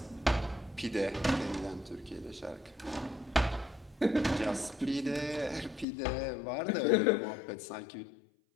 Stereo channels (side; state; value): right; drops out; at 5.9 s